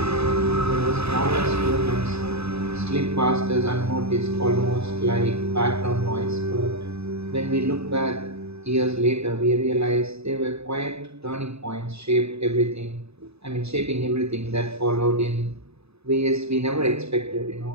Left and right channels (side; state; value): left; late; 0.79 ms